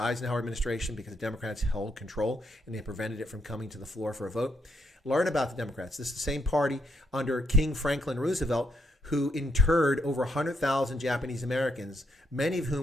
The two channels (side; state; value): both; normal; correlation 0.77